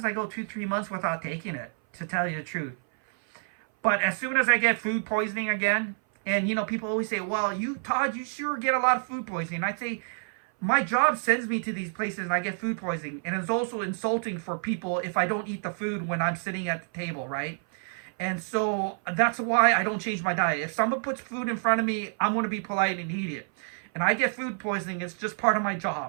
I go 2, 3 months without taking it, to tell you the truth. But as soon as I get food poisoning again, and people always say, well, Todd, you sure get a lot of food poisoning. I say, my job sends me to these places and I get food poisoning. And it's also insulting for people if I don't eat the food when I'm sitting at the table, right? And so that's why I don't change my diet. If someone puts food in front of me, I'm going to be polite and eat it. And I get food poisoning. It's just part of my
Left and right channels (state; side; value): silent; left; 57 dB below the other